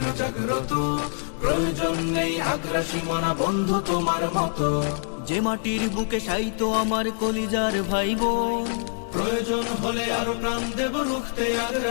জাগ্রত, প্রয়োজন নেই আগ্রাসী মনা বন্ধু তোমার মতো। যে মাটির বুকে শায়িত আমার কলিজার ভাইবোন, প্রয়োজন হলে আরো প্রাণ দেব রুখতে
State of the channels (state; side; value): silent; right; digital silence